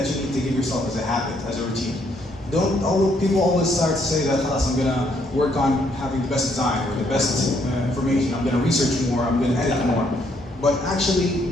you need to give yourself as a habit, as a routine. People always start to say that, I'm gonna work on having the best design or the best information, I'm gonna research more, I'm gonna edit more. But actually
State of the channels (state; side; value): normal; both; correlation 0.70